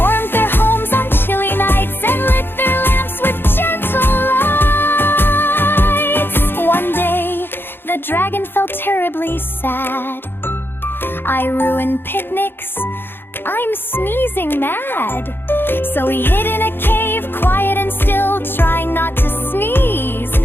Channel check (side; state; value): right; late; 0.10 ms